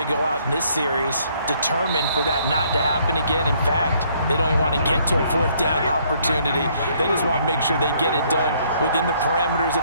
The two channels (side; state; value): both; inverted; correlation -0.66